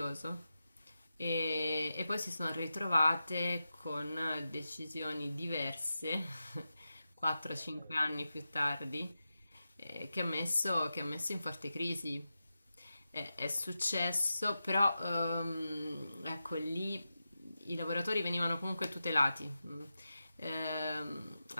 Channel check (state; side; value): inverted; both; correlation -0.91